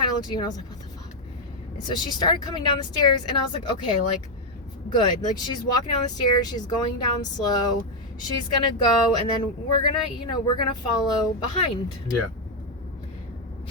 of looked at you and I was like, what the fuck? And so she started coming down the stairs, and I was like, okay, like, good. Like, she's walking down the stairs, she's going down slow, she's gonna go, and then we're gonna follow behind. Yeah.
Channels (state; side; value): normal; both; correlation 0.03